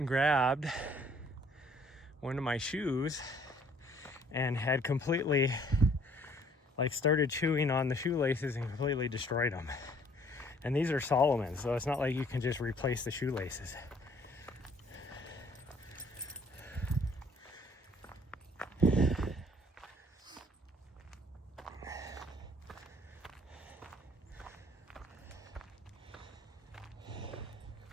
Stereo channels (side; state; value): both; normal; correlation 0.59